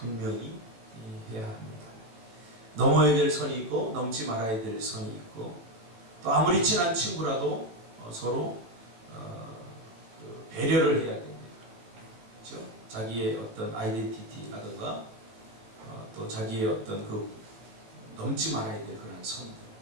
해야 합니다. 넘어야 될 선이 있고 넘지 말아야 될 선이 있고 또 아무리 친한 친구라도 서로 배려를 해야 됩니다. 그렇죠? 자기의 어떤 아이덴티티라든가 또 자기의 어떤 그 넘지 말아야 될 그런 선들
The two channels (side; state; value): left; late; 18 ms